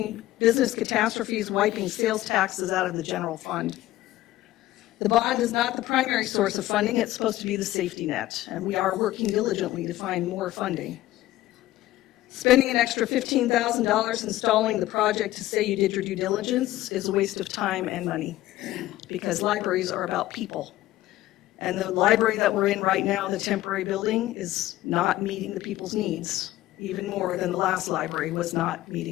business catastrophes wiping sales taxes out of the general fund. The bond is not the primary source of funding. It's supposed to be the safety net, and we are working diligently to find more funding. Spending an extra $15,000 installing the project to say you did your due diligence is a waste of time and money, because libraries are about people. And the library that we're in right now, the temporary building, is not meeting the people's needs, even more than the last library was not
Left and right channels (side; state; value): right; quieter; 15.5 dB